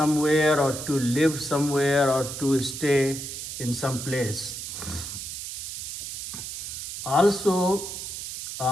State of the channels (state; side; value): noise; right; hiss, 7 dB below the sound